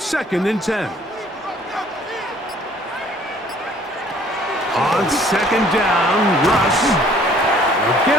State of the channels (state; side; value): normal; both; correlation 0.57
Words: and 10. On 2nd down, Russ will